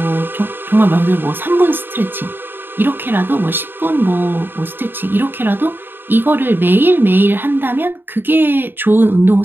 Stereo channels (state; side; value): late; left; 0.097 ms